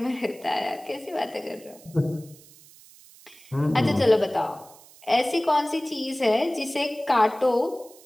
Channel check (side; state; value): right; noise; hiss, 23 dB below the sound